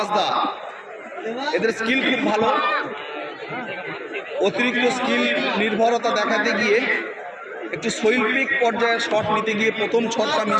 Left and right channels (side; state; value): both; identical; correlation 1.00